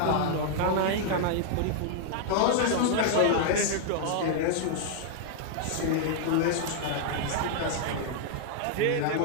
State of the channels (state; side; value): different; both; correlation -0.01